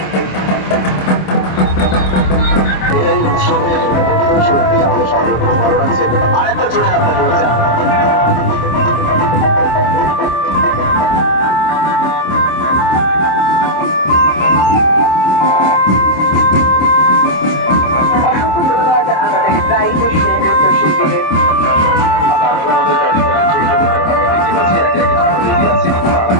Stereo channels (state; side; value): late; right; 26 ms